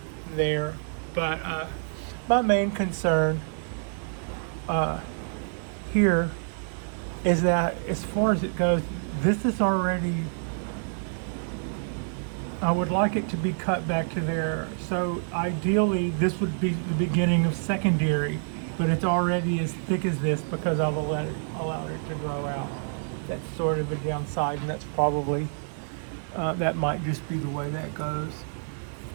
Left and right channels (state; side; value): silent; left; 60 dB below the other